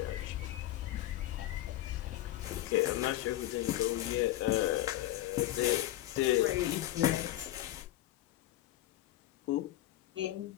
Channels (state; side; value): quieter; right; 14.7 dB